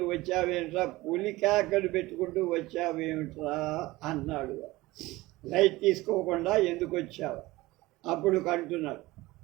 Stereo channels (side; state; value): left; quieter; 19.4 dB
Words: వచ్చావేంట్రా, పులి కేకలు పెట్టుకుంటూ వచ్చావేమిట్రా అన్నాడు. లైట్ తీసుకోకుండా ఎందుకు వచ్చావు? అప్పుడు కంటున్నాడు,